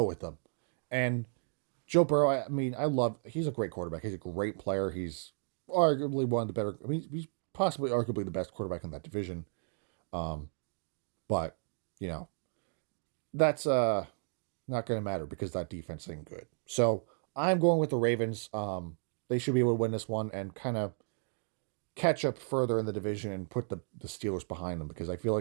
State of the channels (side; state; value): left; silent; digital silence